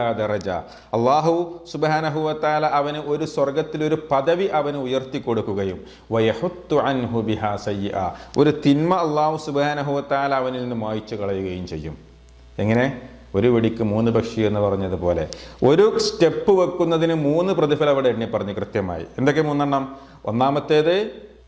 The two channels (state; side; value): identical; both; correlation 1.00